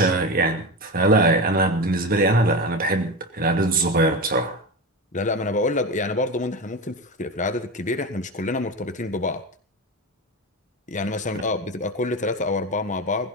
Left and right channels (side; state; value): both; normal; correlation 0.21